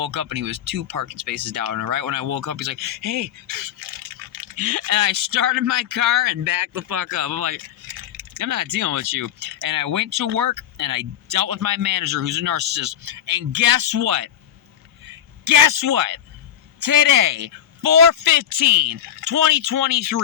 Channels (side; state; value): right; quieter; 10.1 dB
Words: up and he was 2 parking spaces down. And right when I woke up, he's like, hey. And I started my car and backed the fuck up. I'm like, I'm not dealing with you. And I went to work and I dealt with my manager who's a narcissist. And guess what? Guess what? Today,